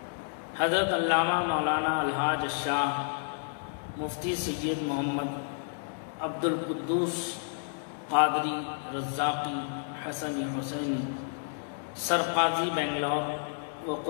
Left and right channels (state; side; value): silent; right; digital silence